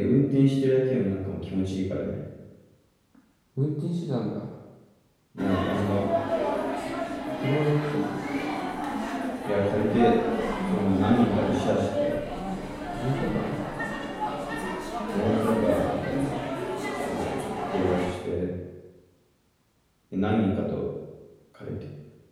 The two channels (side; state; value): both; identical; correlation 1.00